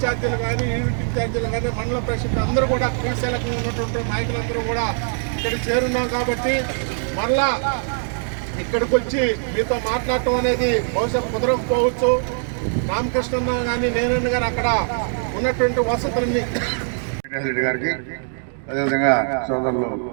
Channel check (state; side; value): silent; left; 56 dB below the other